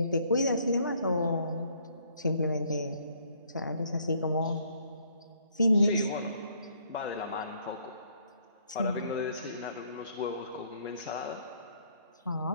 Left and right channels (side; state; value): both; inverted; correlation -0.65